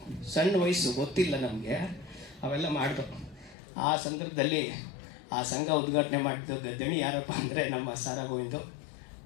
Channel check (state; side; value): drops out; right; at 3.6 s